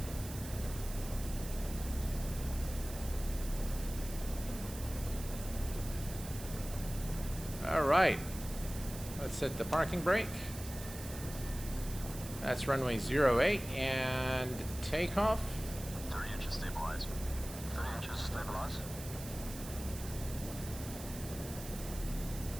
All right, let's set the parking brake. That's runway 08 and takeoff. 30 inches stabilize. 30 inches stabilize.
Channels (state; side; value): noise; right; hiss, 12 dB below the sound